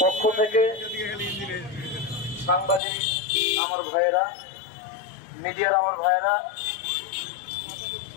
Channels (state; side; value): drops out; right; at 2.8 s